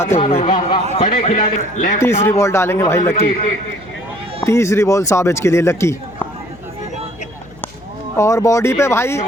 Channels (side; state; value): left; noise; hum, 23 dB below the sound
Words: हुए। बड़े खिलाड़ी। तीसरी बॉल डालेंगे भाई लकी, तीसरी बॉल साबिज के लिए लकी और बॉडी पे भाई,